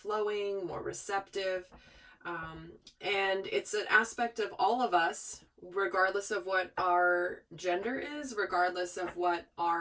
more receptive. And it's an aspect of all of us, regardless of what our gender is, regardless of what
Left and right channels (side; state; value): both; identical; correlation 1.00